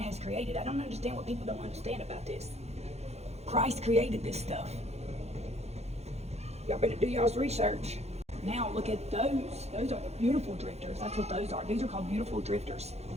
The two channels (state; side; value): late; left; 0.31 ms